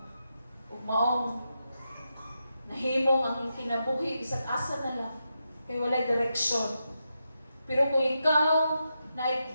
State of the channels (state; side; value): inverted; both; correlation -0.86